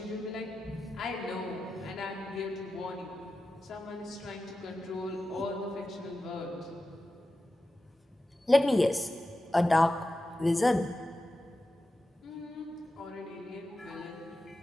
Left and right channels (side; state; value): both; normal; correlation 0.92